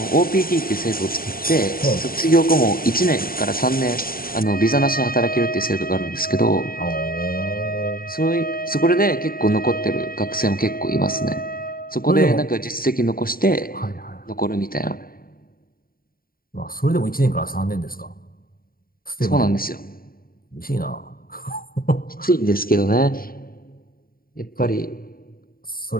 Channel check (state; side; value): late; right; 0.42 ms